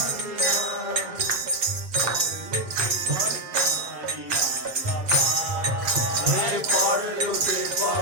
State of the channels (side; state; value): left; late; 7.6 ms